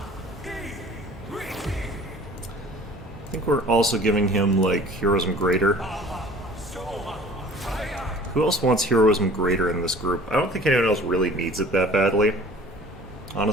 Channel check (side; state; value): both; normal; correlation 0.47